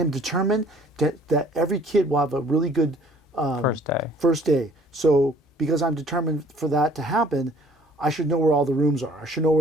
determined that every kid will have a really good first day. So because I'm determined for that to happen, I should know where all the rooms are. I should know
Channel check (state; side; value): normal; both; correlation 0.56